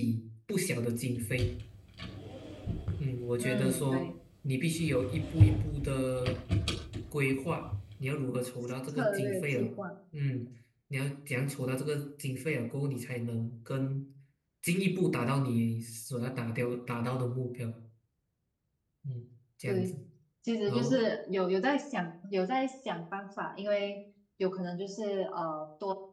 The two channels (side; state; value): both; identical; correlation 1.00